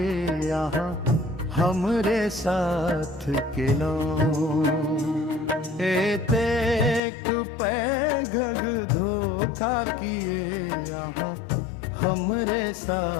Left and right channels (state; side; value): drops out; right; at 7.0 s